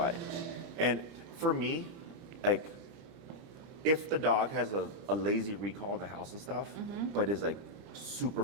And for me, like, if the dog has a lazy recall in the house and stuff, but is like super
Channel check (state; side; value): late; left; 30 ms